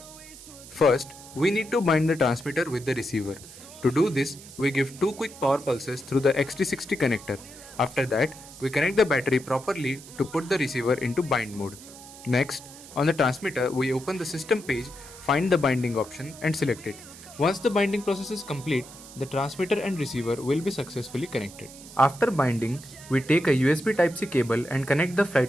First, we need to bind the transmitter with the receiver. To do this, we give 2 quick power pulses through the XT60 connector. After that, we connect the battery properly to put the receiver into bind mode. Next, on the transmitter, we open the system page, find the binding option and select it. Once the binding process is complete, the transmitter and receiver will be successfully connected. After binding, we take a USB Type-C cable and connect the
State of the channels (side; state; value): right; noise; hiss, 17 dB below the sound